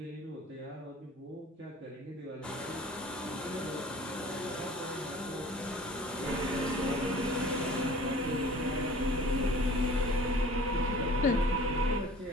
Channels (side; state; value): both; normal; correlation 0.46